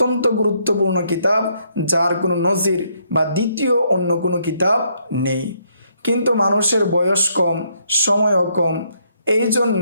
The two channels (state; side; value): inverted; both; correlation -0.72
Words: গুরুত্বপূর্ণ কিতাব, যার কোনো নজির বা দ্বিতীয় অন্য কোনো কিতাব নেই। কিন্তু মানুষের বয়স কম, সময়ও কম, এই